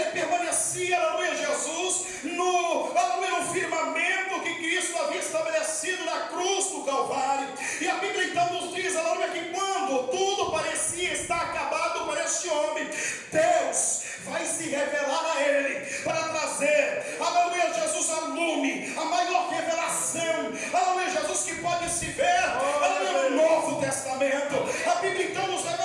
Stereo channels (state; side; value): identical; both; correlation 1.00